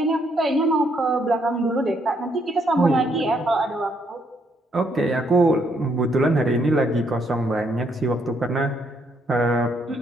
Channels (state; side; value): normal; both; correlation 0.72